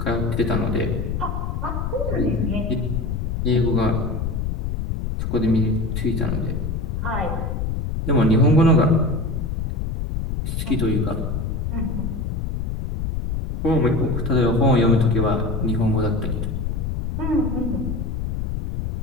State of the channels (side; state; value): left; noise; rumble, 2 dB below the sound